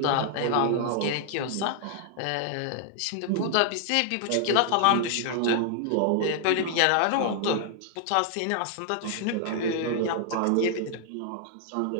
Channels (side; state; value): both; different; correlation 0.00